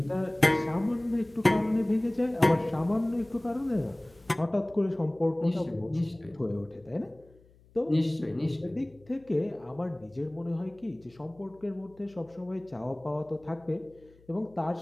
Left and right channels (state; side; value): noise; left; hum, 28 dB below the sound